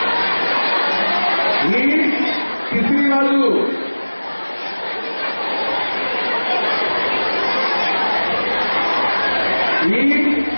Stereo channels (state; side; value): inverted; both; correlation -1.00